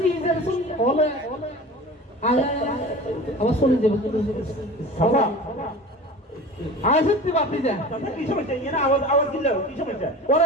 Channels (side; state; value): both; normal; correlation 0.36